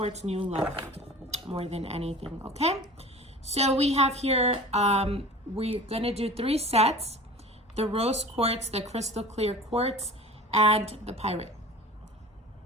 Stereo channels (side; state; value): both; normal; correlation 0.39